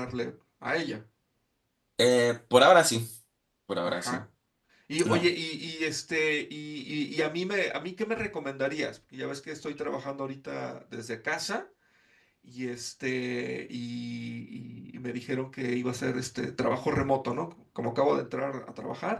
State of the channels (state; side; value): identical; both; correlation 1.00